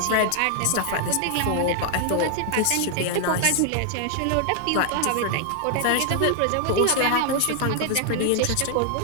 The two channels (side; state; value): both; different; correlation 0.00